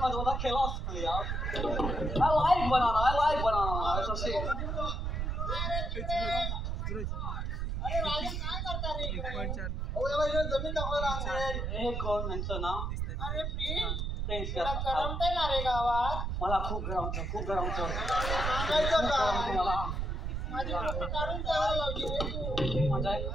आजोबाचा खिलाच नाही यार. I like banana. It's a shame. अरे राजा काय करता रे अहो, याला इकडे जमीन दाखवायला आणलंय. हे कोण यांचं नाव? अरे प्लीज फ्रेंड्स तुला करमतंय ना रे गावात मला खूप गरम होतं. सांगायचं का मला माझी फोटो काढून ठेवायला लावली रे तू म्हणजे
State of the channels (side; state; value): right; noise; rumble, 1 dB below the sound